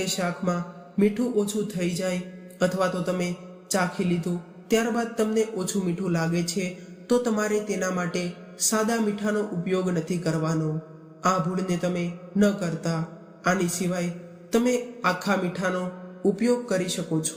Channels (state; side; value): identical; both; correlation 1.00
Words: શાકમાં મીઠું ઓછું થઈ જાય અથવા તો તમે ચાખી લીધું ત્યારબાદ તમને ઓછું મીઠું લાગે છે તો તમારે તેના માટે સાદા મીઠાનો ઉપયોગ નથી કરવાનો. આ ભૂલને તમે ન કરતા. આની સિવાય તમે આખા મીઠાનો ઉપયોગ કરી શકો